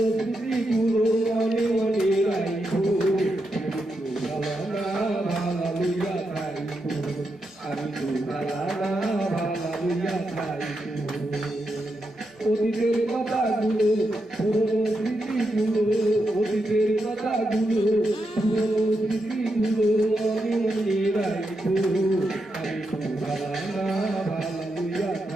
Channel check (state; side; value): normal; both; correlation 0.85